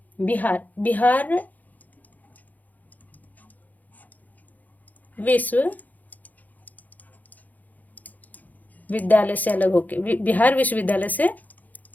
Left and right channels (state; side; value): late; right; 0.081 ms